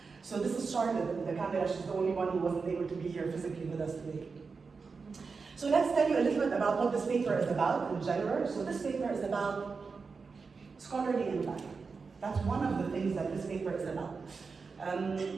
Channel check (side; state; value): left; quieter; 4.8 dB